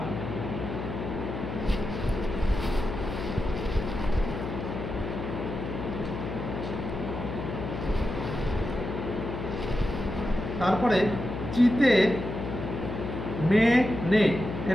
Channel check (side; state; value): left; noise; hum, 5 dB below the sound